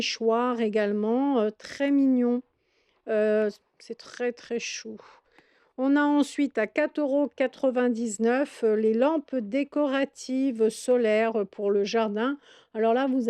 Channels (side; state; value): both; identical; correlation 1.00